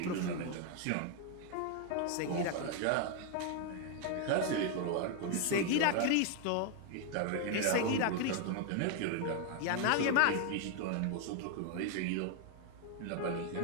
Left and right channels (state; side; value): different; both; correlation 0.00